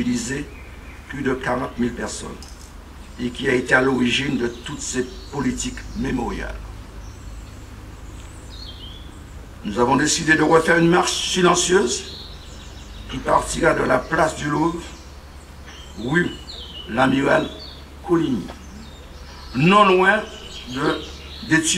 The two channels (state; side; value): identical; both; correlation 1.00